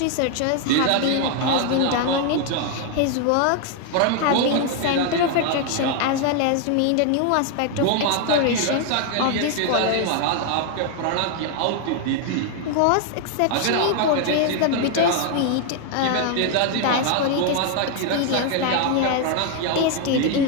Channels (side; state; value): both; different; correlation 0.00